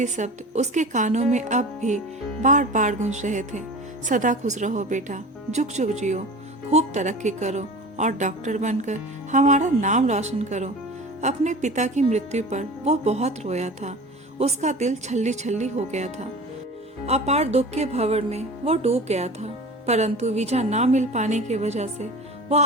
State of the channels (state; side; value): normal; both; correlation 0.37